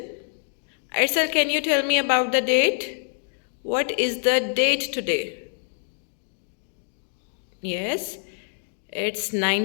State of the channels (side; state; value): right; silent; digital silence